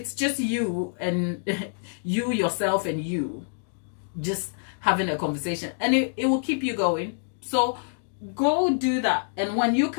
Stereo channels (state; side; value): silent; right; digital silence